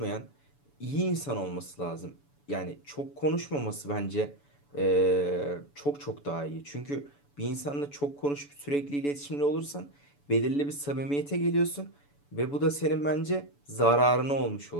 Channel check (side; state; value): right; late; 7.0 ms